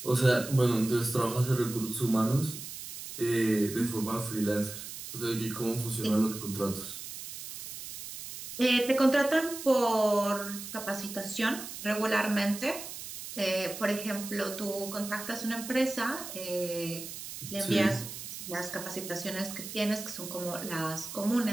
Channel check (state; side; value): noise; right; hiss, 10 dB below the sound